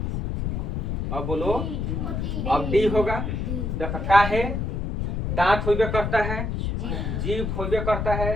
अब बोलो। अब डी होगा। देखो का है, दांत होबे करता है, जीभ होबे करता है,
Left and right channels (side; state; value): left; noise; rumble, 2 dB below the sound